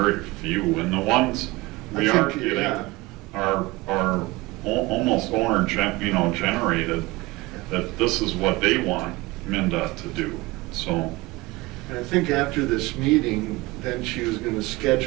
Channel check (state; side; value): quieter; left; 21.6 dB